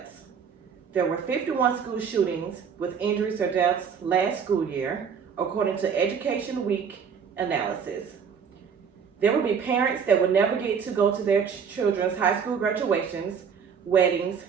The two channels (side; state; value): left; quieter; 6.7 dB